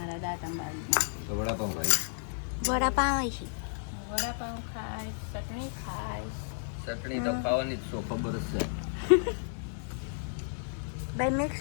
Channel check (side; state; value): right; silent; digital silence